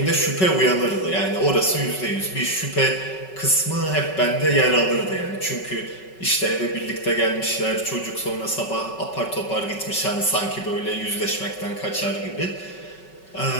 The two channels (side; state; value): right; late; 5.3 ms